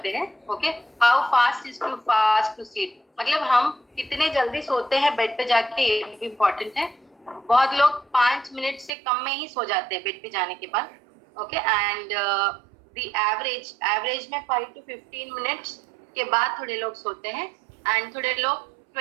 हैं। Okay. How fast is too fast to sleep? मतलब हम कितने जल्दी सोते हैं बेड पे जाके, ये भी इम्पोर्टेंट है। बहुत लोग 5 मिनट से कम में ही सो जाते हैं बेड पे जाने के बाद। ओके, एंड द एवरेज में 5 to 15 मिनट्स के बाद थोड़े लोग सोते हैं, एंड थोड़े लोग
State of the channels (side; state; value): left; drops out; at 8.9 s